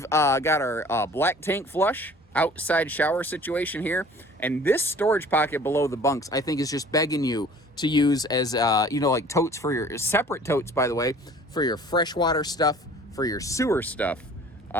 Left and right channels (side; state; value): both; normal; correlation 0.49